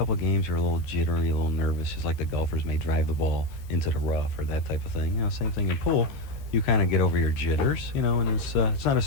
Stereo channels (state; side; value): late; right; 14 ms